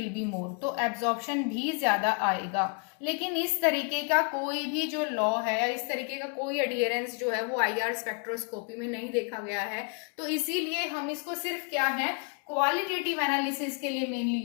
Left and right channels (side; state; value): right; quieter; 37.6 dB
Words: be more, तो एब्जॉर्प्शन भी ज्यादा आएगा। लेकिन इस तरीके का कोई भी जो लॉ है या इस तरीके का कोई एडियरेंस जो है वो आईआर स्पेक्ट्रोस्कोपी में नहीं देखा गया है। तो इसीलिए हम इसको सिर्फ क्या है, क्वालिटेटिव एनालिसिस के लिए मेनली